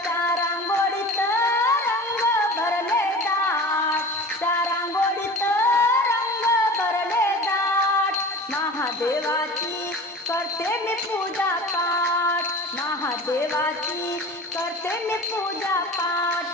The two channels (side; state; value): both; normal; correlation 0.37